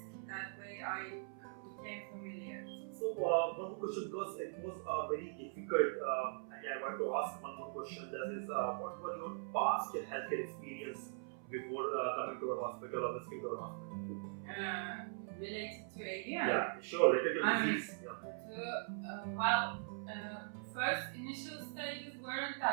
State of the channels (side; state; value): left; silent; 50 dB below the other